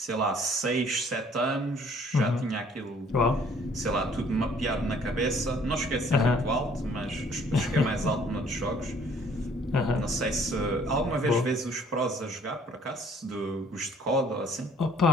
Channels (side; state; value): both; normal; correlation 0.58